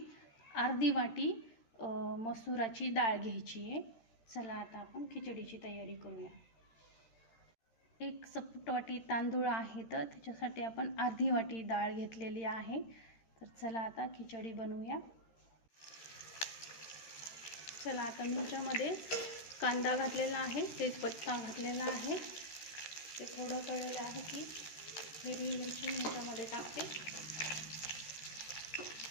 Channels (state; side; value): late; right; 13 ms